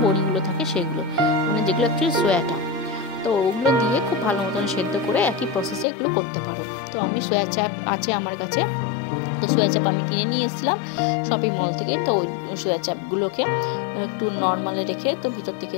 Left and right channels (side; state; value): right; drops out; at 5.9 s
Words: বড়িগুলো থাকে সেগুলো, মানে যেগুলো অ্যাকচুয়ালি সোয়াটা। তো ওগুলো দিয়ে খুব ভালো মতন সেদ্ধ করে একই প্রসেসে এগুলো করতে পারো। তো আমি সোয়া চাপ আছে আমার কাছে, তো সোয়া চাপ আমি কিনে নিয়ে এসেছিলাম শপিং মল থেকে। তো ওই সোয়া চাপগুলোকে একটু নর্মালে রেখে তো ভিতর থেকে